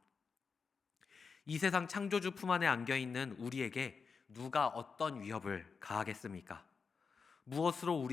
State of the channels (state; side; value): quieter; right; 5.3 dB